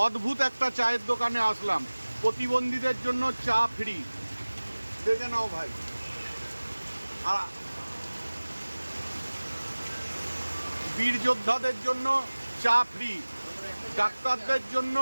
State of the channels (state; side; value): inverted; both; correlation -1.00